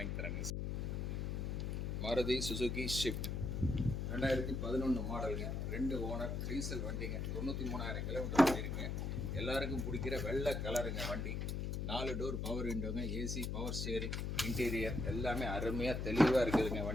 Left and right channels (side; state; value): left; noise; hum, 2 dB below the sound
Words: தராங்க. மாருதி சுசுகி ஷிஃப்ட் 2011 மாடலுங்க, 2 ஓனர், டீசல் வண்டிங்க, 93,000 கிலோமீட்டர் ஓடிருக்குங்க. எல்லாருக்கும் பிடிக்கிற வெள்ளை கலருங்க வண்டி. 4 டோர் பவர் விண்டோங்க, ஏசி, பவர் ஸ்டேரிங், இன்டீரியர் எல்லாமே அருமையாக தெளிவாக இருக்குதுங்க